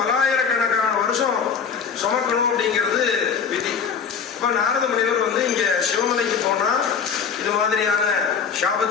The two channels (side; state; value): right; quieter; 6.6 dB